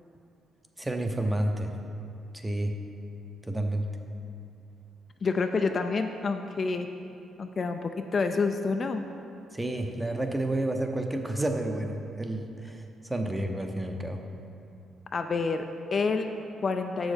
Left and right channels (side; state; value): both; normal; correlation 0.86